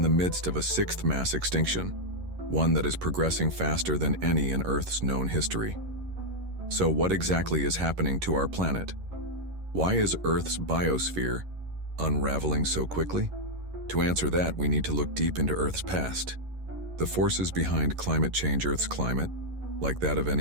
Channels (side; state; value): left; late; 11 ms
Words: the midst of a sixth mass extinction, one that is progressing faster than any in Earth's known history. So what exactly is happening to our planet? Why is Earth's biosphere unraveling so quickly? To answer that, we need to look deep into Earth's past. The forces behind climate change. Earth's climate, like that of